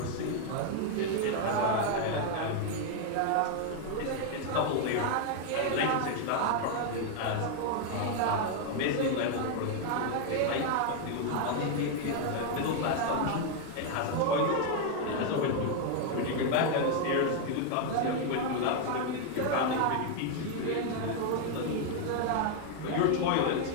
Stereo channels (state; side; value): different; both; correlation 0.00